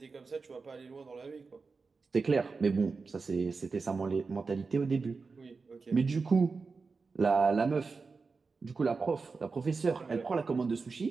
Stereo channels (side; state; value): left; quieter; 4.5 dB